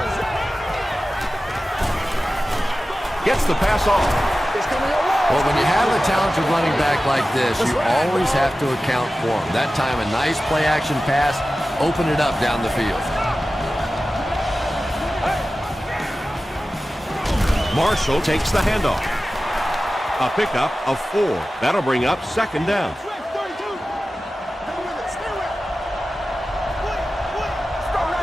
Gets the pass off. Well, when you have a talented running back like this, you always have to account for him. That time, a nice play-action pass, open it up down the field. Marshall takes the handoff. A pickup of 4. That'll bring up second down.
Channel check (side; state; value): both; normal; correlation 0.95